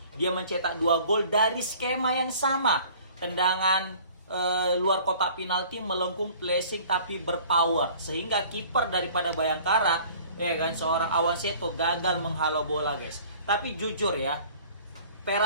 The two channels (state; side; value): inverted; both; correlation -0.50